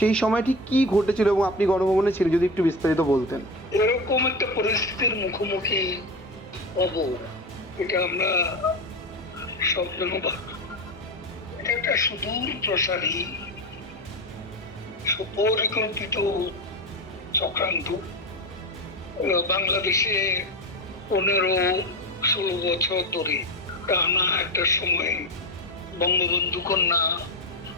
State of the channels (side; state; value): both; normal; correlation 0.21